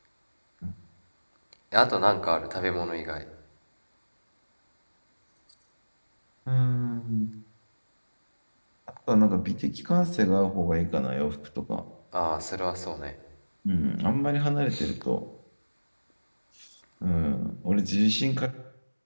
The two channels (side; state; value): both; inverted; correlation -1.00